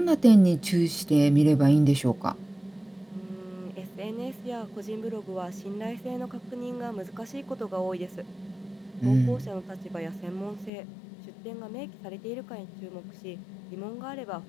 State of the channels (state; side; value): drops out; right; at 10.7 s